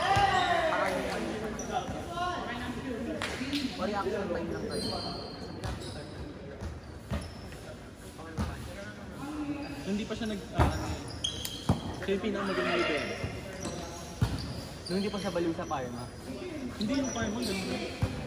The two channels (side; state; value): both; identical; correlation 1.00